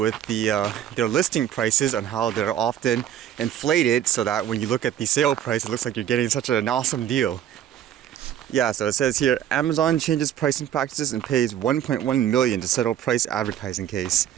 their listing prices and how they're often inflated so that when you look at the sale price, it looks like you're getting such an awesome deal. Yeah, so it says here, Amazon changes pricing practices and pays $1.1 million to settle price advertising case.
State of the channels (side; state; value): left; quieter; 10.6 dB